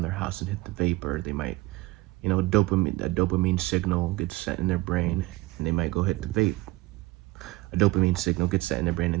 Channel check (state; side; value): quieter; left; 20.0 dB